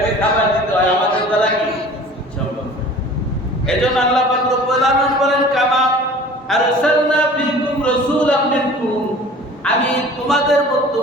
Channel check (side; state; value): both; normal; correlation 0.44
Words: খাবার দিতে হয়, আমাদের দ্বারা কি সম্ভব? এজন্য আল্লাহ পাক রব্বুল আলামিন বলেন, কামা আরসালনা ফীকুম রাসূলাম মিনকুম। আমি তোমাদের মধ্য